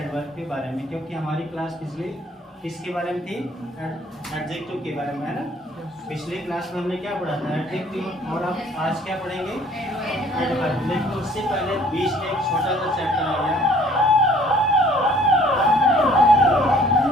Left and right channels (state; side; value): normal; both; correlation 0.56